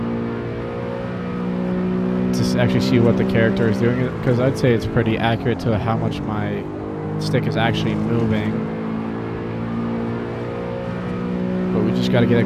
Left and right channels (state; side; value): identical; both; correlation 1.00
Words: actually see what the character is doing, because I'd say it's pretty accurate to how much my stick is actually moving. But we just got to get a